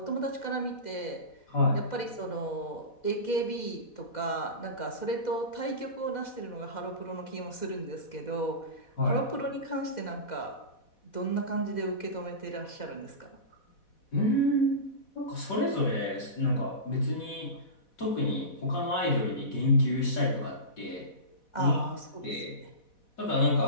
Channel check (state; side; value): late; right; 4.1 ms